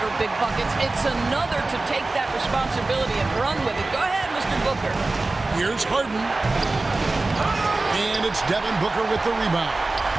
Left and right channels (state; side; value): quieter; left; 3.2 dB